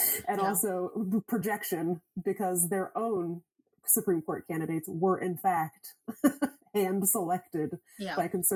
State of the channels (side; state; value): both; identical; correlation 1.00